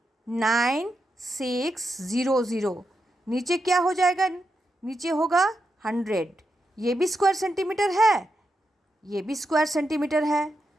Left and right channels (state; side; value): normal; both; correlation 0.86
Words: नीचे क्या हो जाएगा, नीचे होगा 100। ये भी स्क्वायर सेंटीमीटर है, ये भी स्क्वायर सेंटीमीटर है,